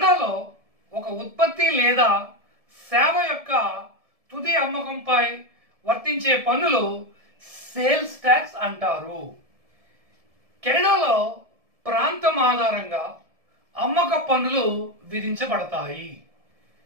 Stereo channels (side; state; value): left; late; 1.7 ms